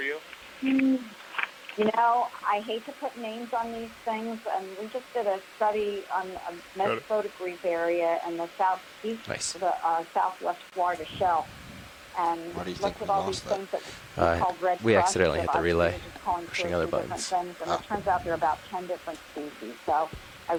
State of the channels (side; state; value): both; identical; correlation 1.00